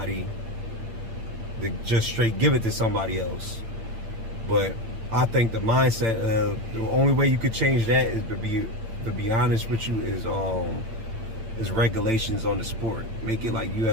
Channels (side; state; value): left; late; 8.9 ms